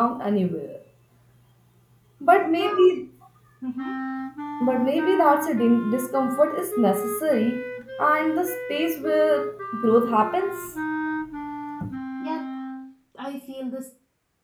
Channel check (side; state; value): both; identical; correlation 1.00